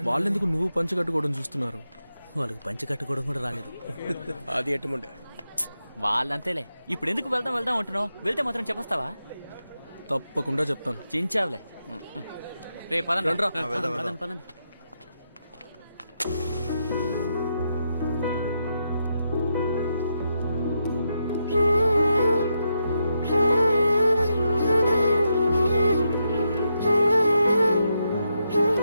వాళ్ళెందుకు నువ్వు పంచ కట్టుకోవడం చూస్తున్నారు? వాళ్ళకి పంచి కట్టుకోవడం కూడా రాలేదు. అది ఎట్టుముండే వాళ్ళంతేలే. ఇప్పుడు ఎందుకు వెళ్దాం వెళ్దాం అంటున్నావు? వెళ్తే మాత్రం చెప్పేస్తావా? తప్పకుండా చెప్తాను. చించావులే. రే పదండి. రండ్రా. పదండి పదండి.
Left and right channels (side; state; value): both; inverted; correlation -0.84